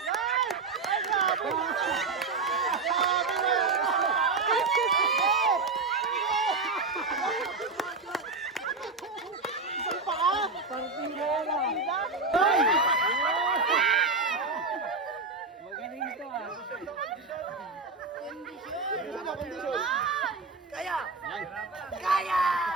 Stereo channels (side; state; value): left; quieter; 4.0 dB